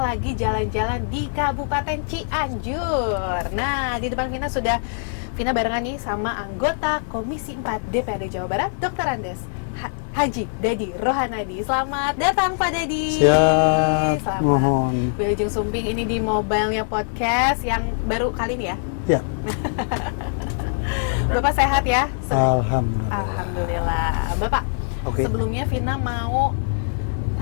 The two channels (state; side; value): silent; right; 59 dB below the other